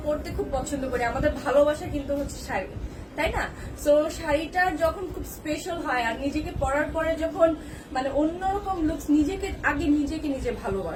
পরতে খুব পছন্দ করি, আমাদের ভালোবাসা কিন্তু হচ্ছে শাড়ি, তাই না? সো শাড়িটা যখন খুব স্পেশাল হয় আর নিজেকে পরার পরে যখন মানে অন্যরকম লুকস, আগে নিজে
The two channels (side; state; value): both; identical; correlation 1.00